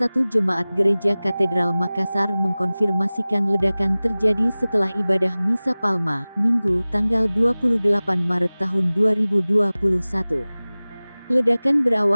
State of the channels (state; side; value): inverted; both; correlation -0.99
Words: jemaat Gereja Katedral Makassar mengkonfirmasikan ledakan terjadi setelah ibadah Misa Palma, Minggu, tanggal 28 Maret tahun 2021. Ledakan